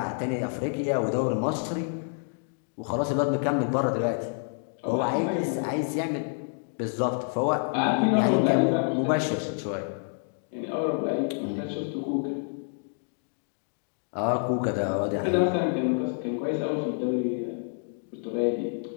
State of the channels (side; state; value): right; silent; 59 dB below the other